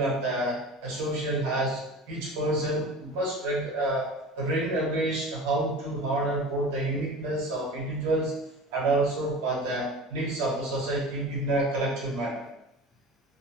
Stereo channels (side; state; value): both; normal; correlation 0.35